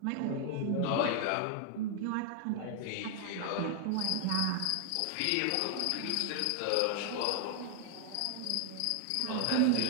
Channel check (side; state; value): both; different; correlation 0.00